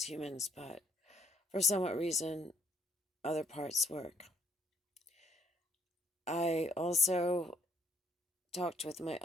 humans, but for some reason, other parts work. I also talked with my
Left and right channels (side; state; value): both; normal; correlation 0.66